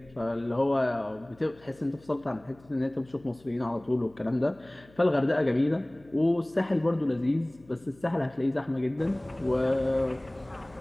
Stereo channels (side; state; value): left; noise; hum, 26 dB below the sound